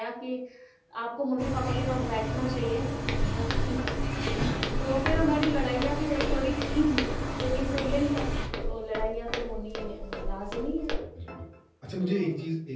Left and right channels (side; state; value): both; identical; correlation 1.00